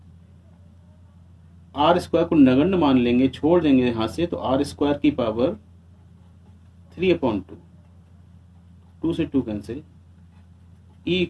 R स्क्वायर को नगण्य मान लेंगे, छोड़ देंगे यहाँ से, तो R स्क्वायर की पावर 3/2, 2 से 2 कैंसिल। E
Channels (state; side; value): identical; both; correlation 1.00